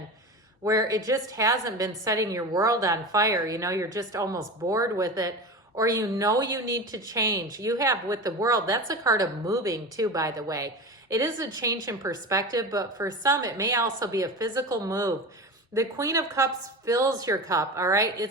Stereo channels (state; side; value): normal; both; correlation 0.27